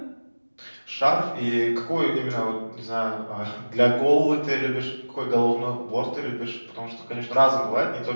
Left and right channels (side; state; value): both; inverted; correlation -1.00